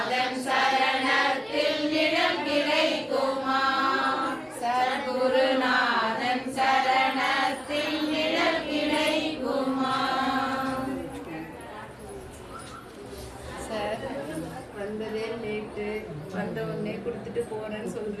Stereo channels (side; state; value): both; identical; correlation 1.00